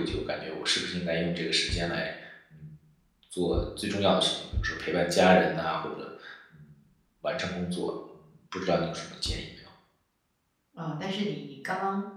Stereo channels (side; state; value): both; identical; correlation 1.00